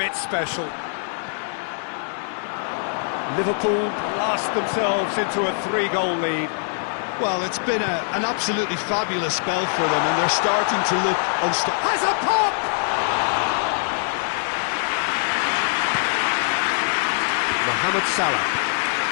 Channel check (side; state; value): right; silent; digital silence